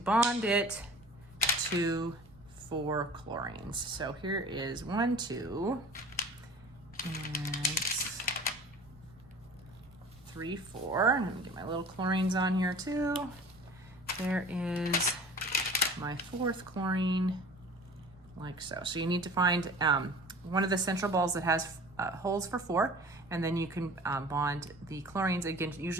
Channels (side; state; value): right; noise; rumble, 26 dB below the sound